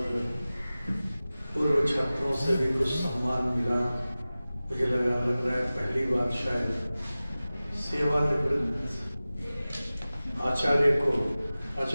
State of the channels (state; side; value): inverted; both; correlation -0.97